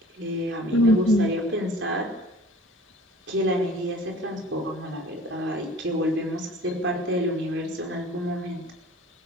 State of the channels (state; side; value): normal; both; correlation 0.46